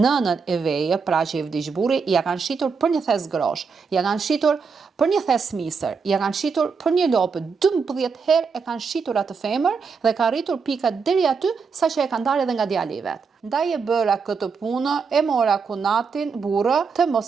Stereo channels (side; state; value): left; quieter; 5.3 dB